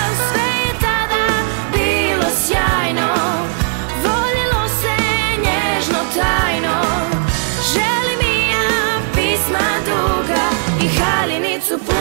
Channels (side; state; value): left; silent; digital silence